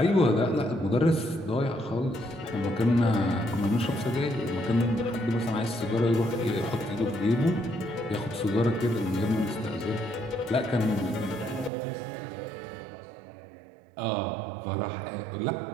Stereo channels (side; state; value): left; drops out; at 11.7 s